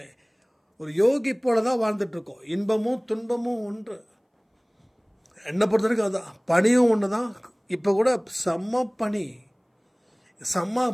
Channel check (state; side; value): identical; both; correlation 1.00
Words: ஒரு யோகி போலதான் வாழ்ந்துட்டு இருக்கோம். இன்பமும் துன்பமும் ஒன்று. என்னை பொறுத்த வரைக்கும் அதுதான். பனியும் ஒன்று தான். இப்போ கூட செம்ம பனி, செம்ம